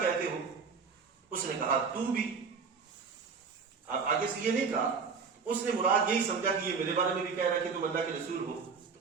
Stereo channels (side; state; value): left; quieter; 5.4 dB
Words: کہتے ہو؟ اس نے کہا تو بھی۔ اب آگے سے یہ نہیں کہا، اس نے مراد یہی سمجھا کہ یہ میرے بارے میں بھی کہہ رہا ہے کہ تم اللہ کے رسول ہو،